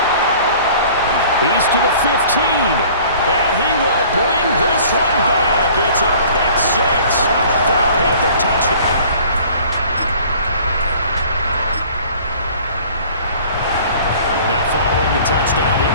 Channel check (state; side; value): inverted; both; correlation -0.50